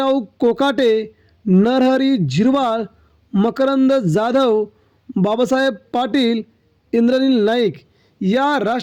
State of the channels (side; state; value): both; identical; correlation 1.00